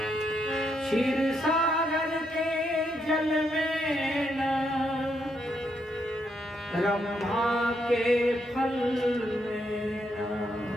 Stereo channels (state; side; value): normal; both; correlation 0.78